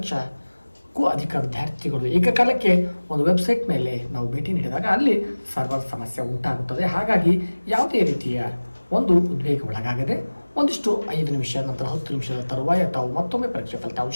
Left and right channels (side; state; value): both; inverted; correlation -1.00